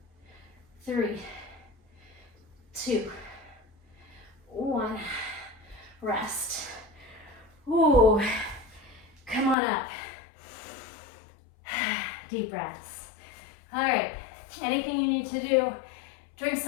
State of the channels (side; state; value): right; drops out; at 9.6 s